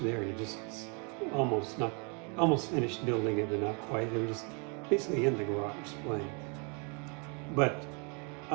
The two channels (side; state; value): left; quieter; 34.9 dB